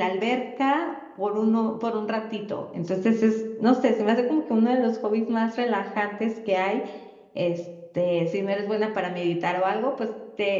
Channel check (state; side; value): identical; both; correlation 1.00